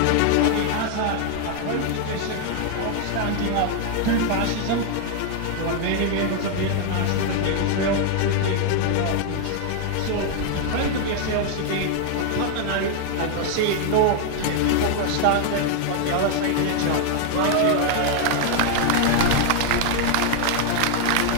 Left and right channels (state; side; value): different; both; correlation 0.00